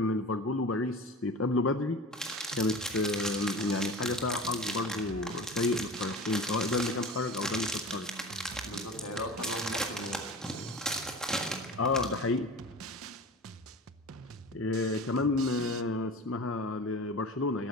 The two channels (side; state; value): both; normal; correlation 0.34